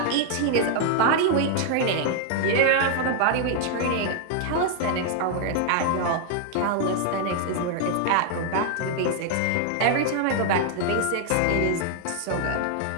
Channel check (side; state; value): both; different; correlation 0.00